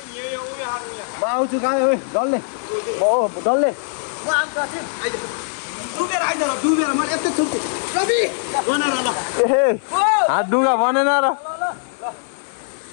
म आउँछु कहाँ डल्ले डल्ले हात डुगा भनेन र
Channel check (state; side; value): silent; right; digital silence